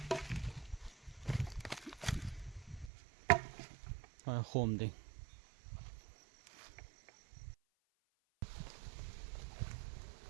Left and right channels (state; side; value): drops out; left; at 2.9 s